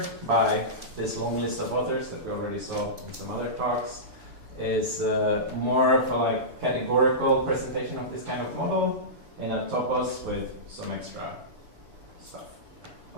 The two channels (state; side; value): late; left; 6.9 ms